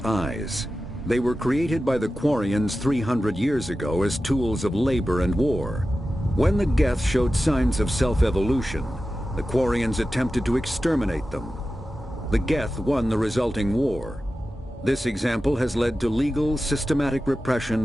They were created by the Quarians 300 years ago as tools of labor and war. When the Geth showed signs of self-evolution, the Quarians attempted to exterminate them. The Geth won the resulting war. This example has led to legal, systematic repression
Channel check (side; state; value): both; normal; correlation 0.93